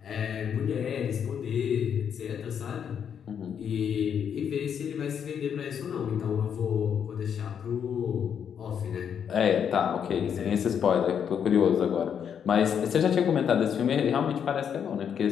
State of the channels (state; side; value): quieter; right; 8.0 dB